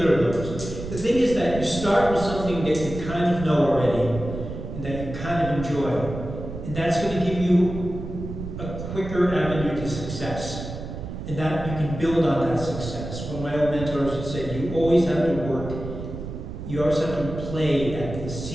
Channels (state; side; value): noise; right; rumble, 8 dB below the sound